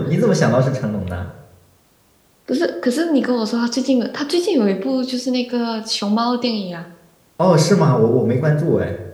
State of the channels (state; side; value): identical; both; correlation 1.00